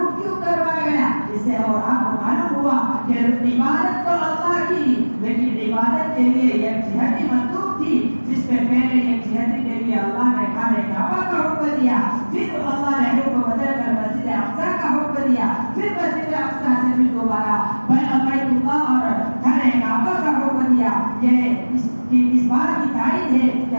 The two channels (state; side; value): inverted; both; correlation -1.00